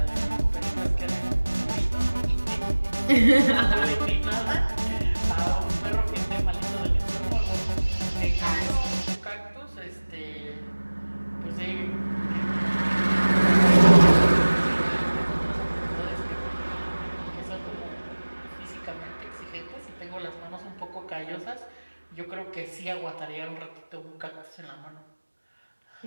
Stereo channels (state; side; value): inverted; both; correlation -1.00